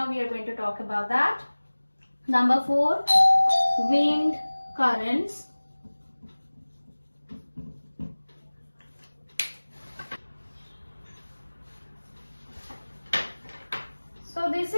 we are going to talk about that. Number 4, wind currents. So this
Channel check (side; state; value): both; inverted; correlation -1.00